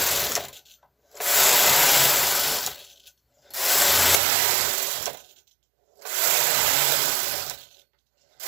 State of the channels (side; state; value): left; drops out; at 4.2 s